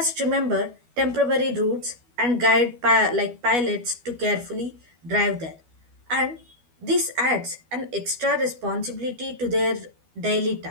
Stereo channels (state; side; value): late; left; 12 ms